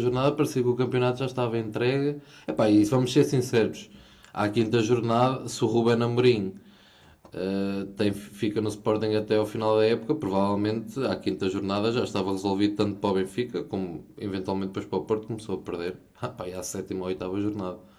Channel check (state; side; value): identical; both; correlation 1.00